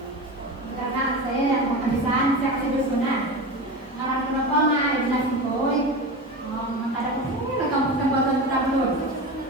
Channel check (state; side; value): normal; both; correlation 0.25